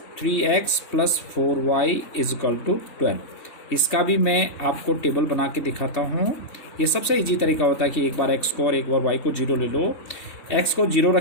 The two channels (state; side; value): late; right; 3.2 ms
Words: 3x + 4y is equal to 12। इसका भी मैं आपको टेबल बना के दिखाता हूँ। ये सबसे इजी तरीका होता है कि एक बार x को और एक बार y को 0 ले लो। x को 0